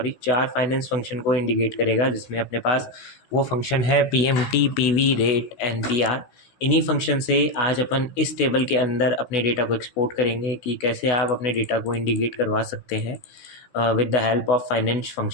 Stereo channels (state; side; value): late; right; 16 ms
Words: फंक्शन को इंडिकेट करेगा, जिसमें अपने पास वो फंक्शन है पीएमटी, पीवी, रेट, एनपीआर। इन्हीं फंक्शन से आज अपन इस टेबल के अंदर अपने डेटा को एक्सपोर्ट करेंगे कि कैसे आप अपने डेटा को इंडिकेट करवा सकते हैं with the help of finance